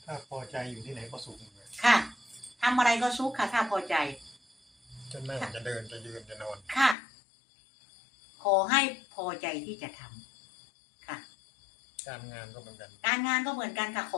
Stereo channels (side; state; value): right; drops out; at 7.0 s